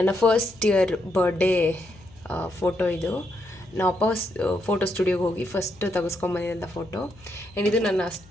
ಫಸ್ಟ್ ಇಯರ್ ಬರ್ಡೇ ಫೋಟೋ. ಇದು ನಾವು ಫೋಟೋ ಸ್ಟುಡಿಯೋಗೆ ಹೋಗಿ ಫಸ್ಟ್ ತೆಗೆಸ್ಕೊಂಬಂದಿದ್ದಂಥ ಫೋಟೋ. ಆ್ಯಂಡ್ ಇದು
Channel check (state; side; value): noise; left; hum, 25 dB below the sound